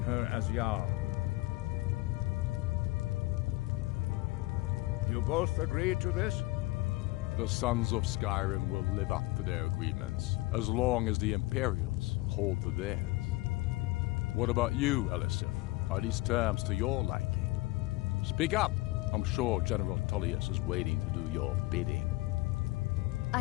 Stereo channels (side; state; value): right; quieter; 20.7 dB